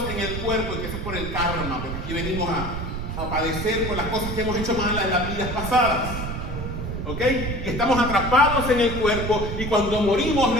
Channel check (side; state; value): right; noise; rumble, 5 dB below the sound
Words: en el cuerpo, y que eso es por el karma, porque aquí venimos a padecer por las cosas que hemos hecho mal en las vidas pasadas. ¿Ok? Y estamos atrapados en el cuerpo, y cuando morimos